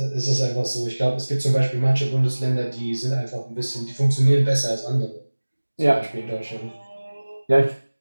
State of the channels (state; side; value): inverted; both; correlation -1.00